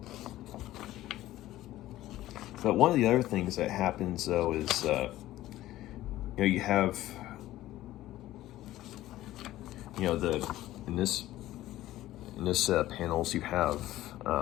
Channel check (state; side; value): quieter; right; 15.1 dB